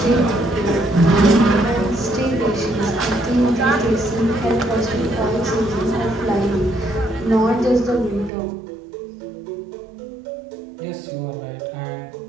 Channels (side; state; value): left; drops out; at 8.3 s